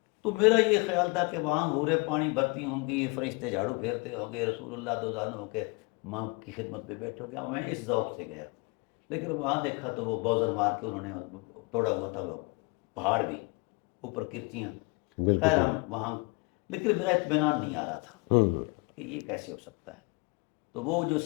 تو میرا یہ خیال تھا کہ وہاں حوریں پانی بھرتی ہوں گی، فرشتے جھاڑو پھیرتے ہوں گے، رسول اللہ دوزانوں ہو کے ماں کی خدمت پہ بیٹھو گیا. میں اس ذوق سے گیا، لیکن وہاں دیکھا تو وہ بوزر مار کے انہوں نے توڑا ہوا تھا وہ پہاڑ بھی، اوپر کرچیاں. خیر ہم وہاں، لیکن میرا اطمینان نہیں آ رہا تھا کہ یہ کیسے ہو سکتا ہے. تو وہ جو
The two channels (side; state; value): right; quieter; 29.5 dB